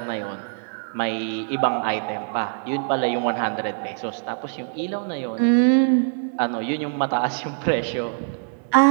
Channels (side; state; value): left; silent; digital silence